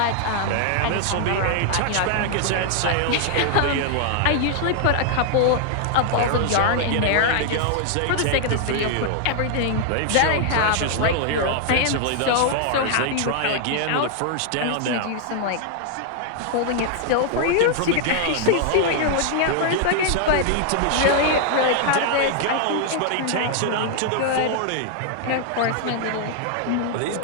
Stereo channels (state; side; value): different; both; correlation 0.00